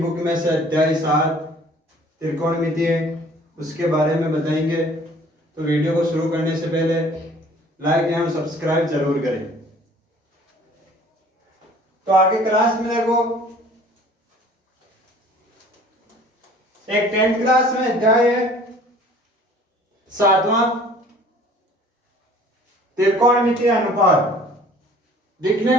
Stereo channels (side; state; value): both; normal; correlation 0.52